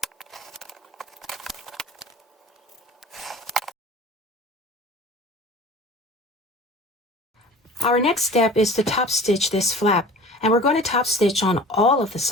Our next step is to top stitch this flap, and we're going to top stitch on all of the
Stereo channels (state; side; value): normal; both; correlation 0.42